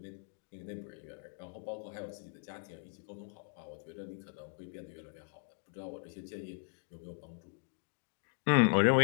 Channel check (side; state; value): right; silent; digital silence